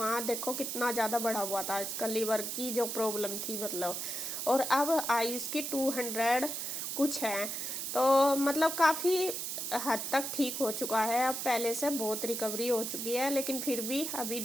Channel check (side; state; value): right; noise; hiss, 3 dB below the sound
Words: देखो कितना ज़्यादा बढ़ा हुआ था इसका लीवर की जो प्रॉब्लम थी, मतलब। और अब आई उसकी 200 कुछ है, तो मतलब काफ़ी हद तक ठीक हो चुका है, अब पहले से बहुत रिकवरी हो चुकी है। लेकिन फिर भी अभी